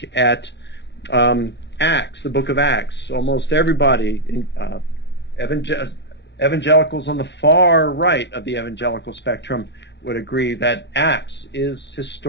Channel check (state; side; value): late; right; 0.51 ms